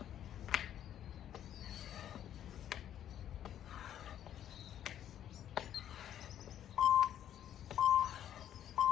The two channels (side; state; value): right; quieter; 10.7 dB